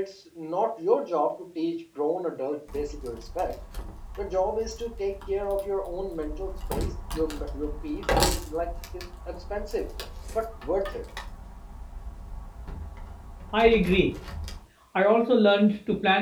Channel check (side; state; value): both; identical; correlation 1.00